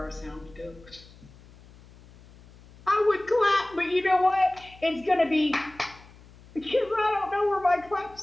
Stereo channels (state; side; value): noise; left; hum, 23 dB below the sound